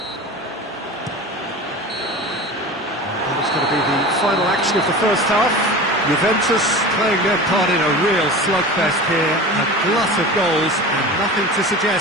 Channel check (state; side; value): normal; both; correlation 0.33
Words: And it's going to be the final action of the first half. Juventus playing their part in a real slugfest here. A glut of goals and nothing to